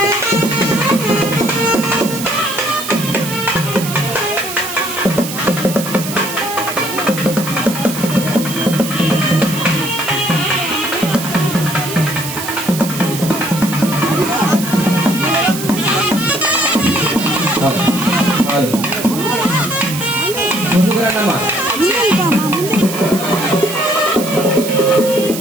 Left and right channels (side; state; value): right; noise; hiss, 8 dB below the sound